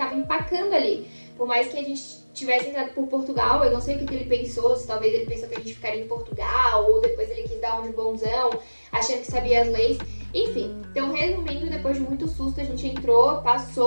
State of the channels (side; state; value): both; inverted; correlation -1.00